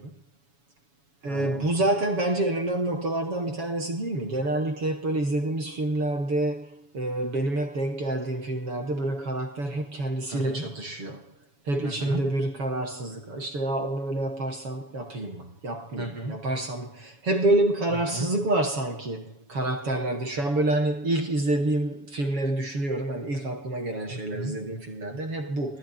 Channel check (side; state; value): left; late; 7.1 ms